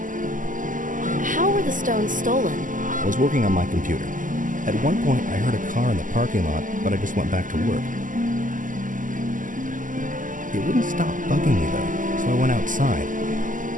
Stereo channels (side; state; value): left; late; 0.38 ms